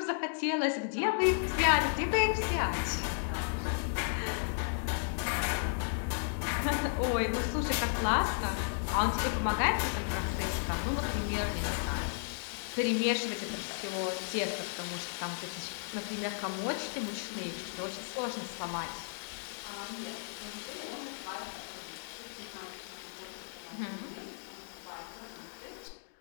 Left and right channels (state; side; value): silent; right; digital silence